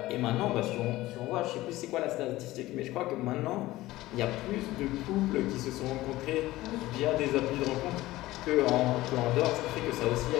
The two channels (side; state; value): right; quieter; 17.4 dB